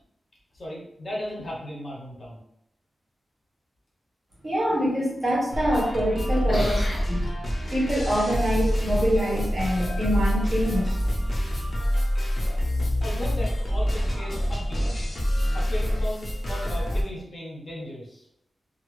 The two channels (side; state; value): both; normal; correlation 0.93